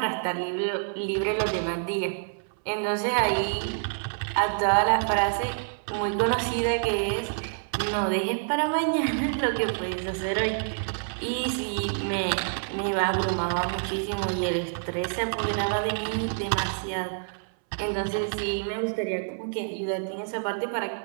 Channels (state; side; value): silent; left; 60 dB below the other